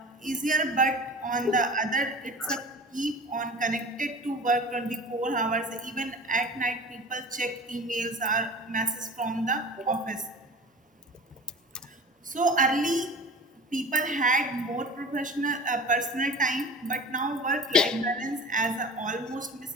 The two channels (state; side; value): normal; both; correlation 0.37